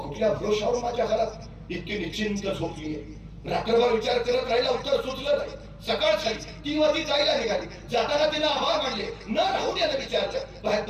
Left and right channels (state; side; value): identical; both; correlation 1.00